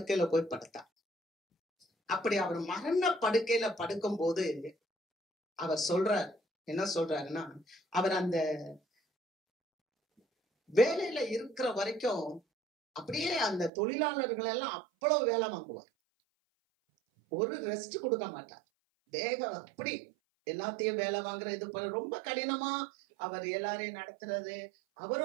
போய் படுத்தார். அப்படி அவர் மரண படுக்கையில படுக்கும் போது அவர் சொல்றார், என்ன சொல்றாருன்னா, அவர் அந்த வேலையில இருக்கிற வரைக்கும் அப்படியே அந்த தொழிலாளர்கள் எல்லாம் அவ்வளவு வேலை வாங்குவார். ஒரு ரெஸ்ட் கொடுக்க மாட்டார். வேகம் அப்படி எல்லாத்தையும் வேலை வாங்குற இது ரொம்ப கடினமா அவர் எல்லாரையும் நடத்துறது.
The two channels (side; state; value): left; drops out; at 13.7 s